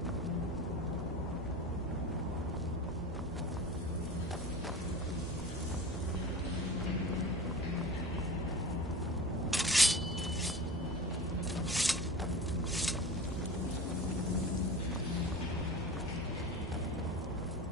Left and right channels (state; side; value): normal; both; correlation 0.34